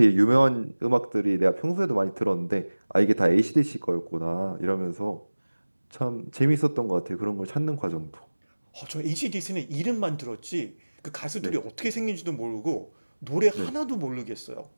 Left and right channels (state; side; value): inverted; both; correlation -1.00